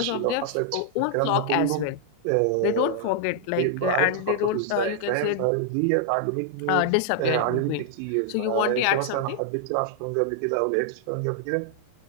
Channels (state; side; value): different; both; correlation -0.01